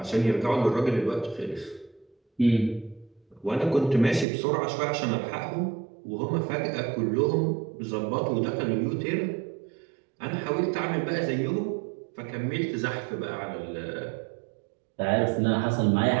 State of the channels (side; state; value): left; drops out; at 4.2 s